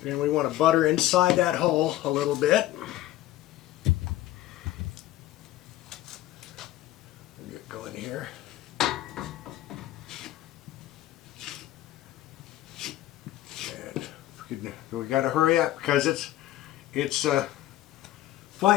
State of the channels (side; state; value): right; quieter; 14.7 dB